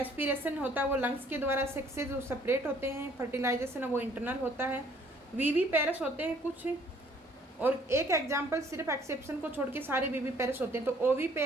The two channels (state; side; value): normal; both; correlation 0.60